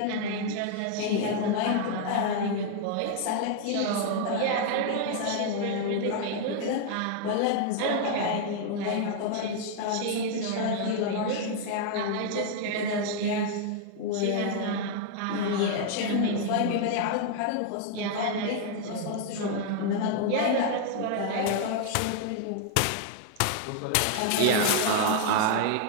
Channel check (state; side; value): different; both; correlation 0.00